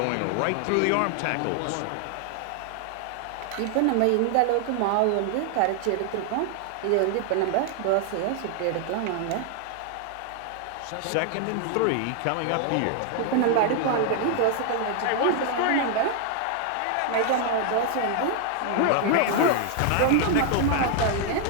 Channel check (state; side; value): different; both; correlation 0.00